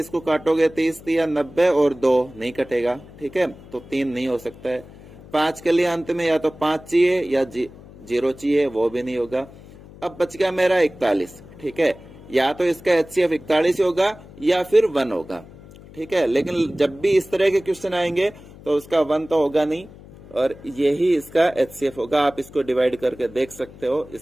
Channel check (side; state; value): left; noise; hum, 20 dB below the sound